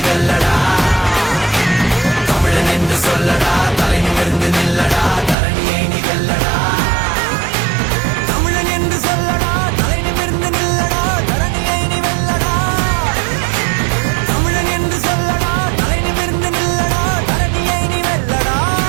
தமிழன் என்று சொல்லடா தலை நிமிர்ந்து நில்லடா தரணியை நிகழடா தமிழன் என்று சொல்லடா தலை நிமிர்ந்து நில்லடா தரணியை நீ வெல்லடா தமிழன் என்று சொல்லடா தலை நிமிர்ந்து நில்லடா தரணியை நீ வெல்லடா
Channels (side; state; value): left; drops out; at 5.4 s